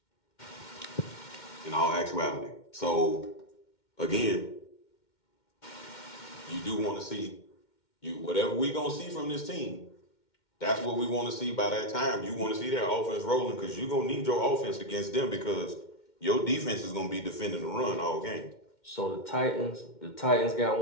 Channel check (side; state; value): right; late; 2.1 ms